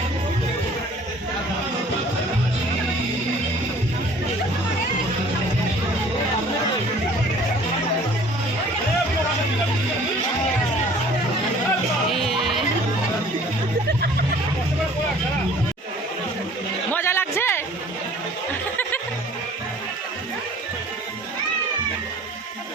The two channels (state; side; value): normal; both; correlation 0.51